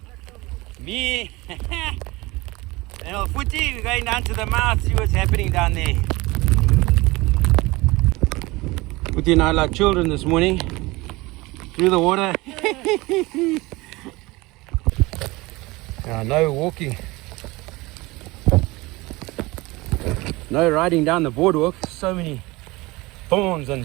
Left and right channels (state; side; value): quieter; left; 22.1 dB